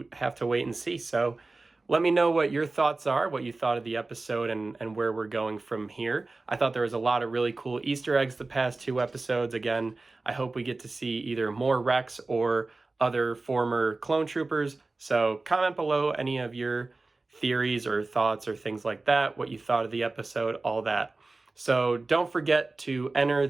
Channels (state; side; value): quieter; left; 3.4 dB